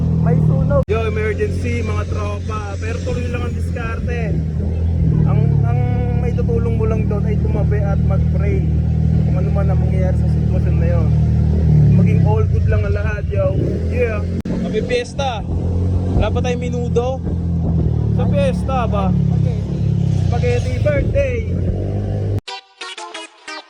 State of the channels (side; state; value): both; identical; correlation 1.00